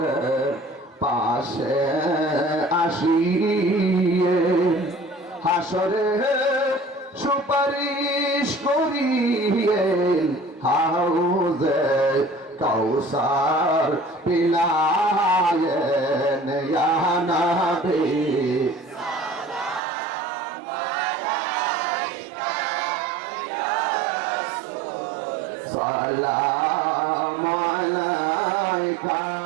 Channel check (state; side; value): drops out; left; at 19.8 s